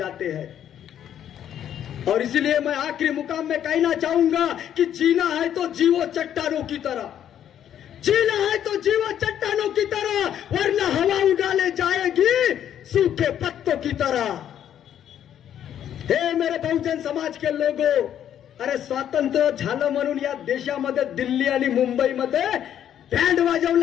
हैं. और इसलिए मैं आखिरी मुकाम में कहना चाहूंगा कि जीना है तो जीवो चट्टानों की तरह, जीना है तो जीवो चट्टानों की तरह, वरना हवा उड़ाले जाएगी सूखे पत्तों की तरह. हे मेरे बहुजन समाज के लोगो, अरे स्वातंत्र्य झालं म्हणून या देशामध्ये दिल्ली आणि मुंबईमध्ये बँड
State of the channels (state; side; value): quieter; right; 10.1 dB